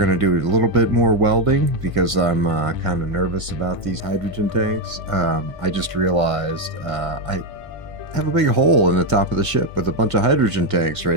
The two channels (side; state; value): left; late; 1.6 ms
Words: to do a little bit more welding because I'm kind of nervous about these hydrogen tanks. I just realized I have a big hole in the top of the ship with a bunch of hydrogen tanks